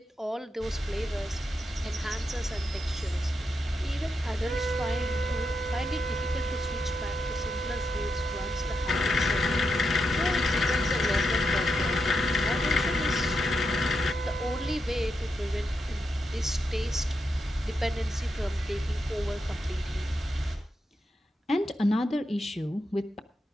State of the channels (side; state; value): both; normal; correlation 0.85